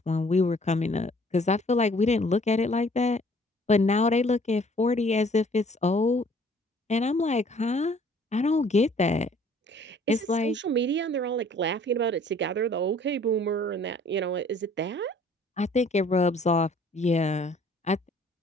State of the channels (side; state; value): both; normal; correlation 0.57